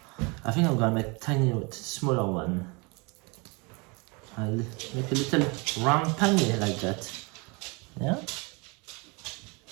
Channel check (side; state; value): left; quieter; 29.3 dB